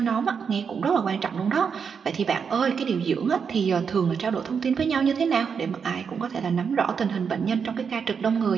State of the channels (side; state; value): left; quieter; 6.4 dB